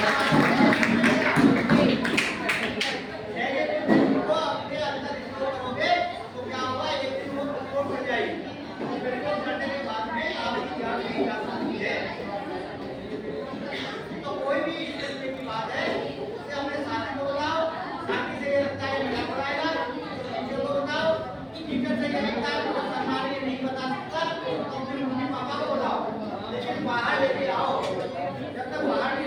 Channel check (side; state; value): both; identical; correlation 1.00